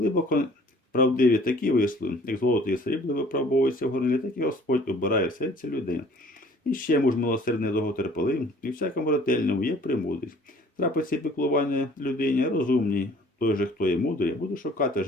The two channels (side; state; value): both; normal; correlation 0.53